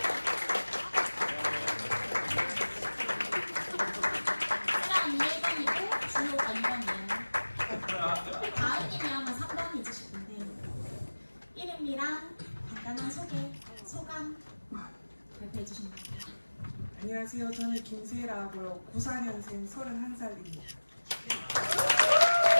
안녕하세요. 저는 김세라고요. 94년생 31살입니다.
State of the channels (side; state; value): both; inverted; correlation -1.00